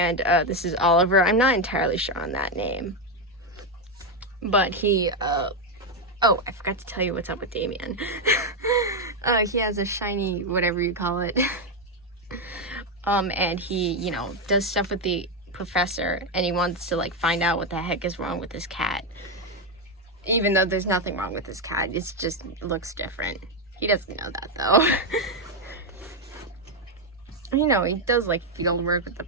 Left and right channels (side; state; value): both; normal; correlation 0.06